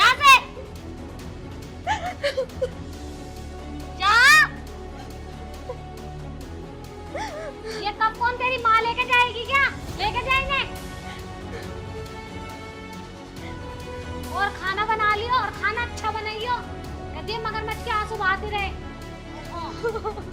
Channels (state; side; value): identical; both; correlation 1.00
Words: से। जा। ये कब कौन तेरी माँ लेके जाएगी क्या? लेके जाएंगे। और खाना बना लियो, और खाना अच्छा बनाइयो। कहती मगरमच्छ के आंसू बहाते रहे। हाँ,